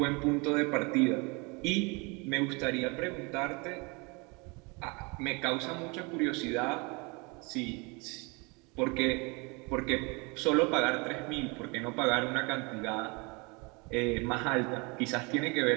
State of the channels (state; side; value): quieter; left; 29.2 dB